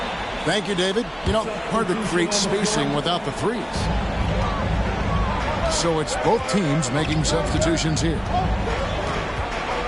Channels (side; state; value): both; identical; correlation 1.00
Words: Thank you, David. You know, hard to create spacing without the threes. So it's both teams making substitutions here.